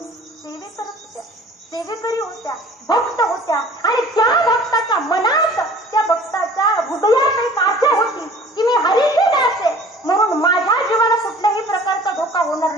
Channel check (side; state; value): both; normal; correlation 0.48